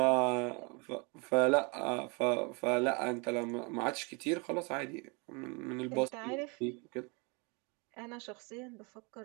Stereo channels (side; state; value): left; quieter; 31.1 dB